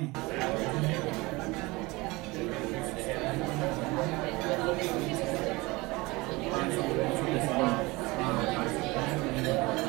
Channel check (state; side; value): quieter; left; 23.0 dB